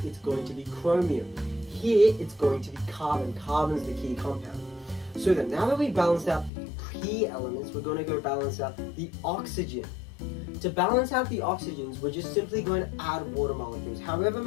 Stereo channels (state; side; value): drops out; right; at 6.5 s